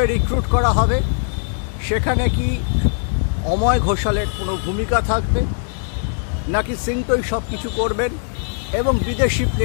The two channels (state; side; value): silent; right; digital silence